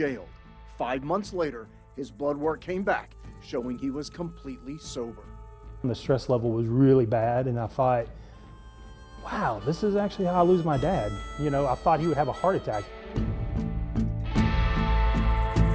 5 months later, his blood work came back, showing he was completely sober. The stress level was really bad, and I thought, wow, this is actually how I lose my dad. You know, I thought he would have a heart attack.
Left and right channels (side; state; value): both; identical; correlation 1.00